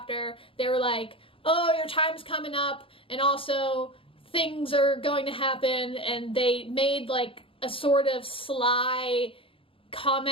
they were like, oh, your time's coming up and also things are going to happen, and they made like a sort of sly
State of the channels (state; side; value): late; right; 0.26 ms